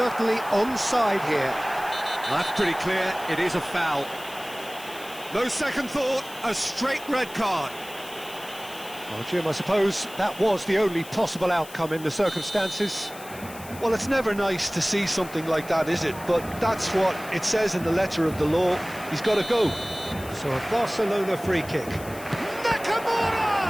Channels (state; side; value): noise; left; hiss, 17 dB below the sound